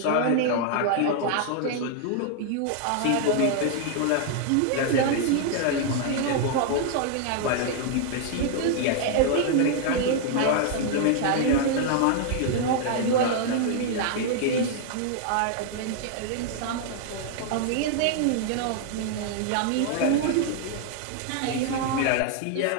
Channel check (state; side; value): different; both; correlation 0.00